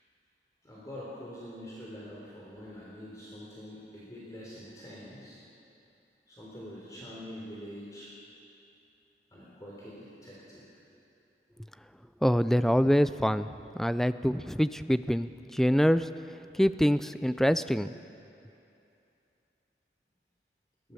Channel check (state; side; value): normal; both; correlation 0.98